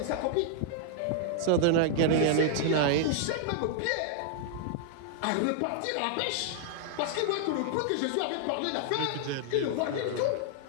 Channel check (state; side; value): different; both; correlation -0.01